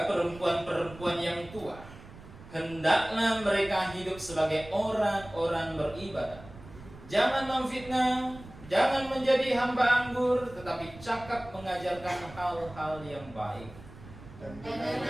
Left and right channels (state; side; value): noise; right; rumble, 18 dB below the sound